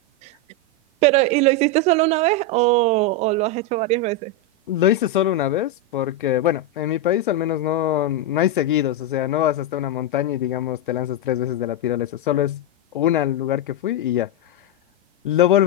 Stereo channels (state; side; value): normal; both; correlation 0.04